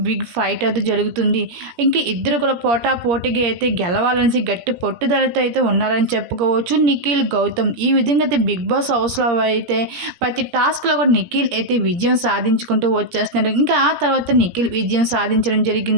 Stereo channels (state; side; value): late; left; 17 ms